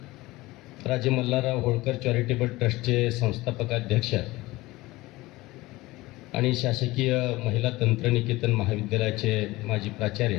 राजे मल्हारराव होळकर चॅरिटेबल ट्रस्टचे संस्थापक अध्यक्ष आणि शासकीय महिला तंत्रनिकेतन महाविद्यालयाचे माजी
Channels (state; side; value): quieter; right; 19.7 dB